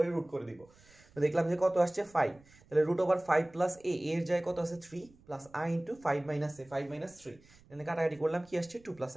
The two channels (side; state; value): right; noise; rumble, 27 dB below the sound